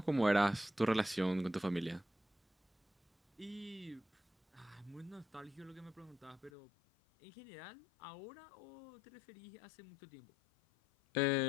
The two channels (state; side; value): drops out; right; at 6.5 s